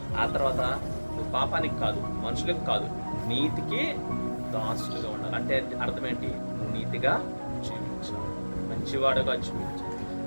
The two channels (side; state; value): both; inverted; correlation -1.00